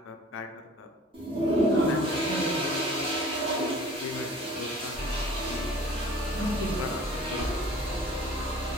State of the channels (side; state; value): both; normal; correlation 0.49